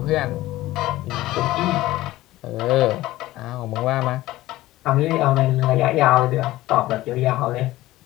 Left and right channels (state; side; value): quieter; right; 16.8 dB